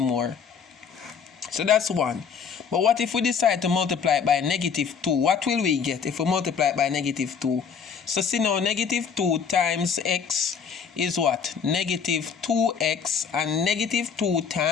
So that's one. But what if we decide to multiply it by negative 2? What will we get if we multiply it by negative 2? So see now, negative 2 times x is what? Negative 2x, and negative 2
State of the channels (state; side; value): quieter; right; 6.6 dB